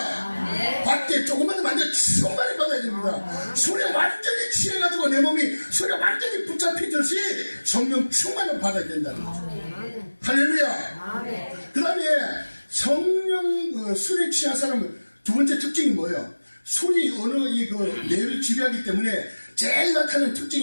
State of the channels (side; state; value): both; inverted; correlation -1.00